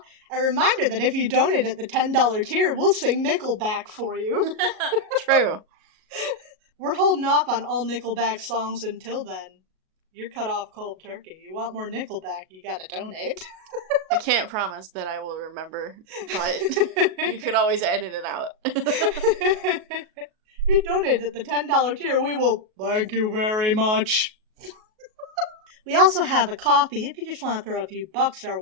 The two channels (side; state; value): left; late; 37 ms